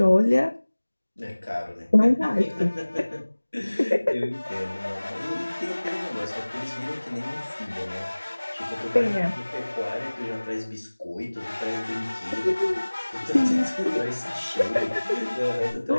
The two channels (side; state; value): both; inverted; correlation -1.00